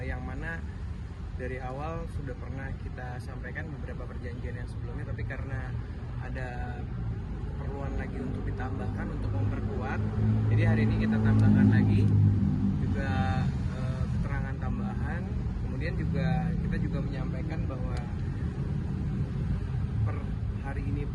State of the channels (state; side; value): identical; both; correlation 1.00